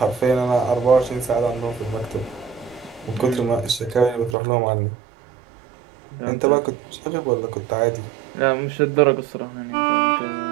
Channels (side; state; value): left; drops out; at 4.4 s